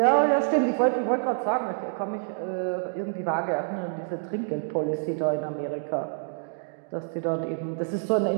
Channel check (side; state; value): left; silent; digital silence